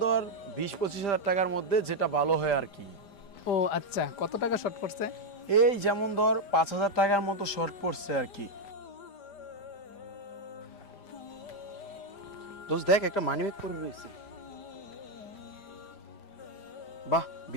ধর 20-25 হাজার টাকার মধ্যে যেটা ভালো হয় আর কি। ও আচ্ছা, কত টাকা শর্ট পড়ছে? এই যেমন ধর 5,000 টাকার মতো শর্ট পড়ছে আর কি। দোস্ত দেখ, একটা মানিব্যাগ পরে রয়েছে। বাহ,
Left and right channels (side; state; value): right; late; 5.0 ms